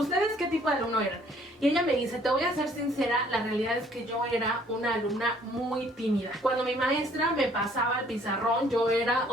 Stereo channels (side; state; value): both; normal; correlation 0.60